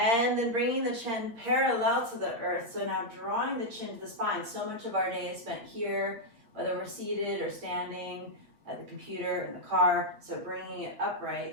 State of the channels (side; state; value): left; late; 8.5 ms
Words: then bringing the chin parallel to the earth. So now drawing the chin to the spine. So much of our day is spent here, whether we're seated or standing at the computer, in the car. So bringing it